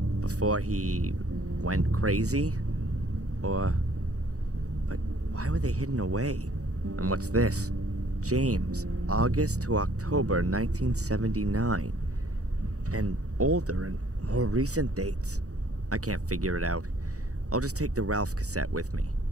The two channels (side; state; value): left; late; 0.66 ms